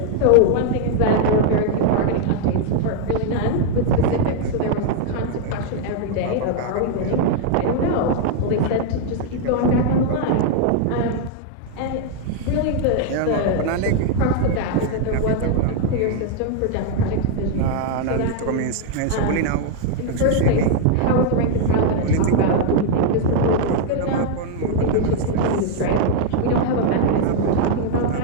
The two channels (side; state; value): both; different; correlation 0.00